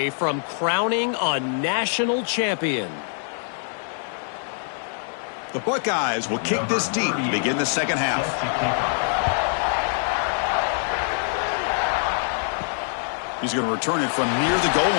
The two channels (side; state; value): right; silent; digital silence